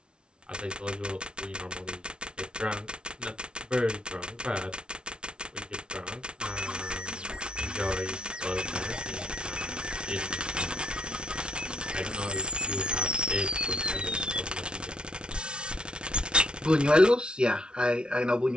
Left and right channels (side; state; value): left; late; 0.056 ms